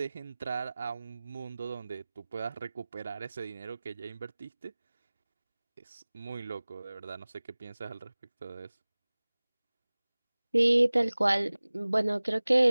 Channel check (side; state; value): both; inverted; correlation -0.99